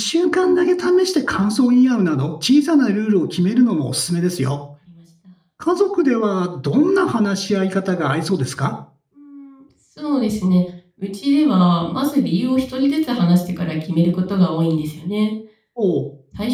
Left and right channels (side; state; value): both; identical; correlation 1.00